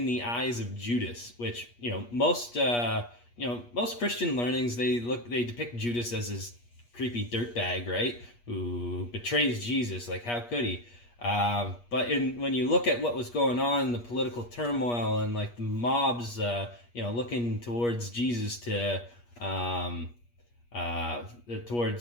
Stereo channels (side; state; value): right; late; 8.4 ms